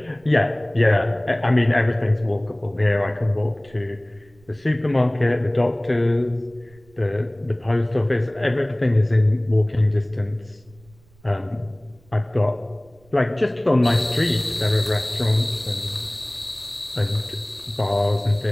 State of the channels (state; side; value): noise; right; rumble, 29 dB below the sound